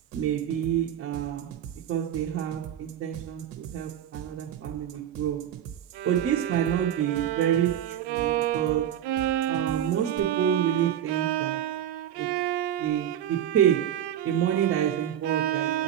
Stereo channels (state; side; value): quieter; left; 10.4 dB